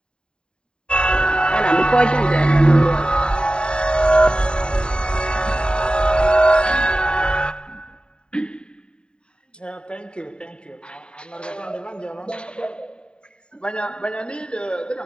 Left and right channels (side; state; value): right; late; 0.050 ms